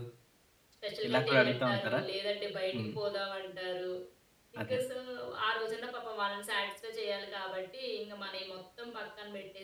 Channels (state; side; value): identical; both; correlation 1.00